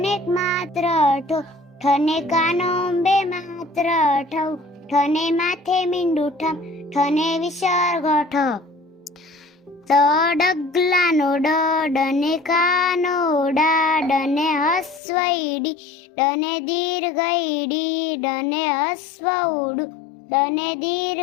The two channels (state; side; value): drops out; right; at 15.0 s